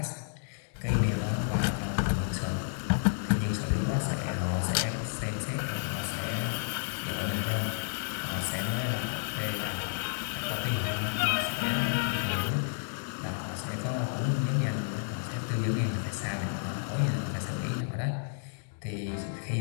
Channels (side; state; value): right; silent; digital silence